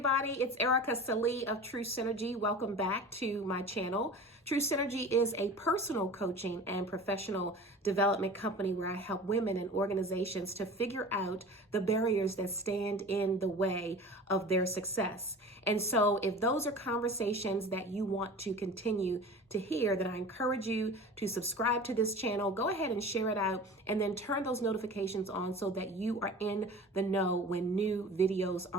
It's Ericka Sallee of True Synergy. Welcome back to my channel. True Synergy is a personal coaching and professional development company where I help women and organizations to figure out the barriers that stand in the way of their success. And so if those are conversations that you want to continue to hear, then I encourage you to subscribe to this channel. Go ahead and share it out and then turn those notifications on so that you are in the know when new videos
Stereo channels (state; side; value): normal; both; correlation 0.38